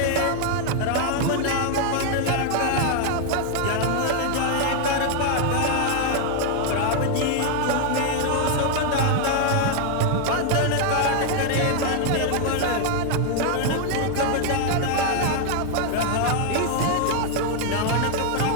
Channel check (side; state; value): both; different; correlation 0.00